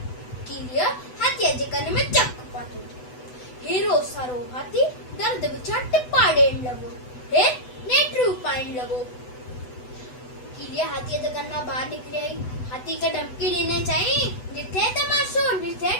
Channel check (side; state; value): right; late; 8.0 ms